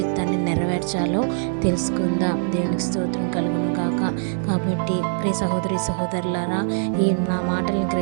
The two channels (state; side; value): silent; left; 64 dB below the other